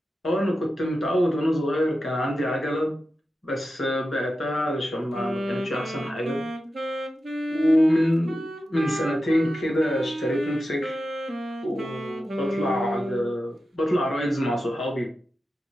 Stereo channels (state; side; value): normal; both; correlation 0.91